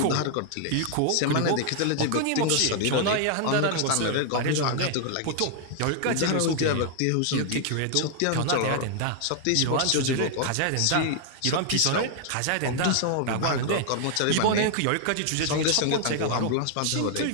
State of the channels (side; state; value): both; different; correlation 0.00